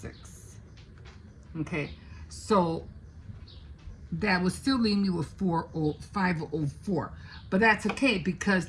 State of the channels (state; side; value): identical; both; correlation 1.00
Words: Okay, so that would still leave me with 504, but that's okay because